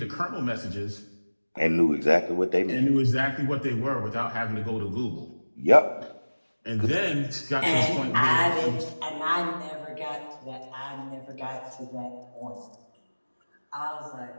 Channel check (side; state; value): both; inverted; correlation -1.00